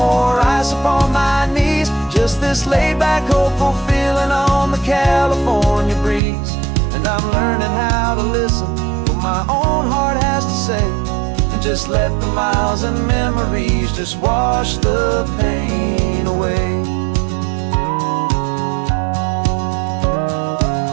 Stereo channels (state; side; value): drops out; left; at 6.2 s